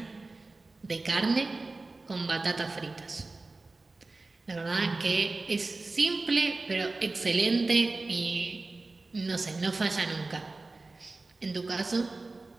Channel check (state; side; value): quieter; left; 3.4 dB